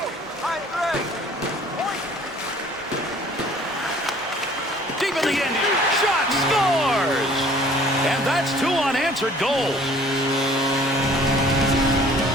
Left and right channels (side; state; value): both; normal; correlation 0.53